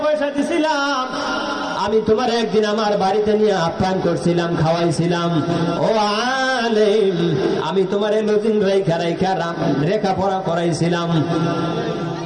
পয়সা দিছিলাম, আমি তোমার একদিন আমার বাড়িতে নিয়ে আপ্যায়ন করছিলাম, খাওয়াইছিলাম। ও আলেম, আমি তোমার লজিং লেখাপড়া করাইছিলাম,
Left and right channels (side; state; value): both; identical; correlation 1.00